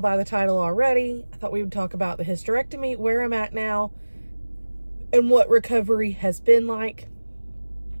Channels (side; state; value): both; inverted; correlation -1.00